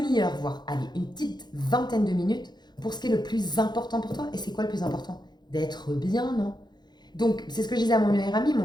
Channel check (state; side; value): late; right; 0.21 ms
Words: voire allez, une petite vingtaine de minutes pour ce qui est le plus important pour toi. Et c'est quoi le plus important? D'être bien, non? Donc, c'est ce que je disais à mon meilleur ami. Mon